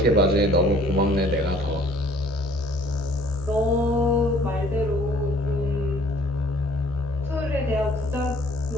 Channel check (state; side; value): normal; both; correlation 0.56